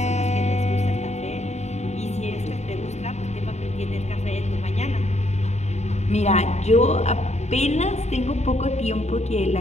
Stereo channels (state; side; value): late; right; 0.32 ms